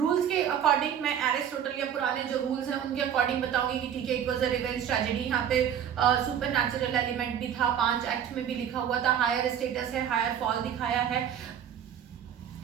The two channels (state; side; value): quieter; left; 9.0 dB